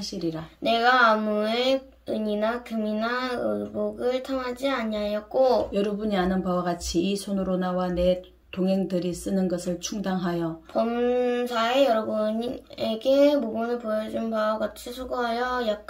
내가 아무의 은이나 금이나 의복을 탐하지 아니하였고 여러분이 아는 바와 같이 이 손으로 나와 내 동행들이 쓰는 것을 충당하여 범사에 여러분에게 모범을 보여준 바와 같이 수고하여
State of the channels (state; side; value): identical; both; correlation 1.00